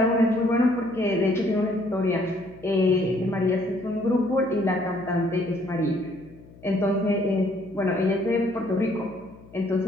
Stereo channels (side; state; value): left; noise; hum, 22 dB below the sound